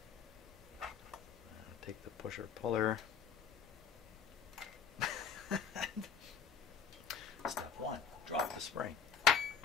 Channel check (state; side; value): quieter; right; 6.9 dB